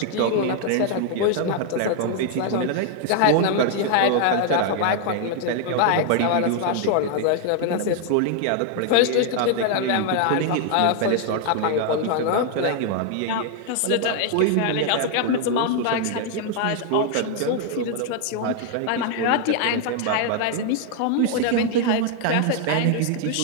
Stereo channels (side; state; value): both; different; correlation 0.00